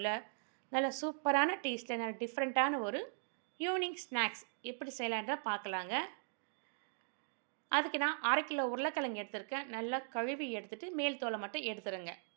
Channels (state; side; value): silent; left; digital silence